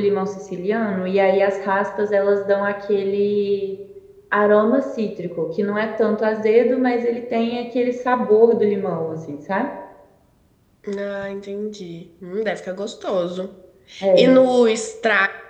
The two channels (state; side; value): identical; both; correlation 1.00